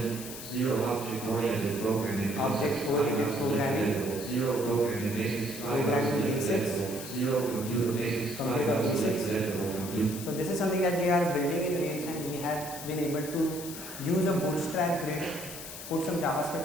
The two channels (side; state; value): left; noise; hiss, 10 dB below the sound